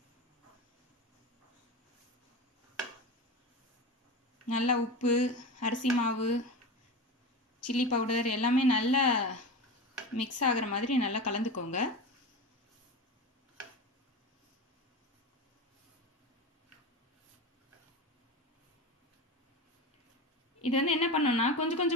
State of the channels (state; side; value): normal; both; correlation 0.25